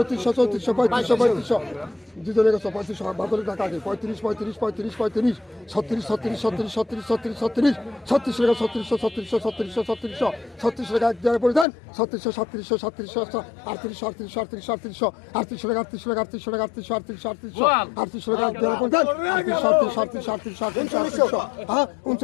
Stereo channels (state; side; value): drops out; right; at 11.7 s